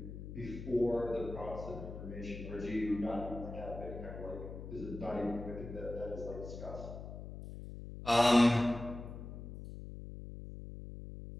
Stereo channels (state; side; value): noise; left; hum, 10 dB below the sound